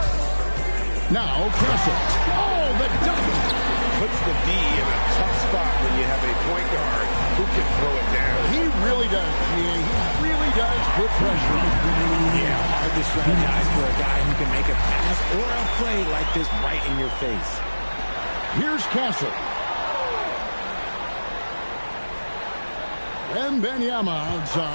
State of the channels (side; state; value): both; inverted; correlation -1.00